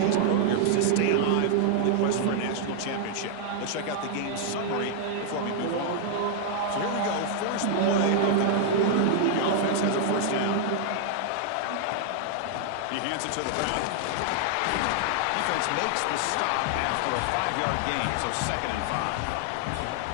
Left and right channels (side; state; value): both; different; correlation -0.01